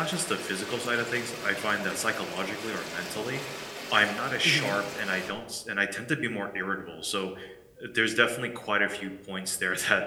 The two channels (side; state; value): both; identical; correlation 1.00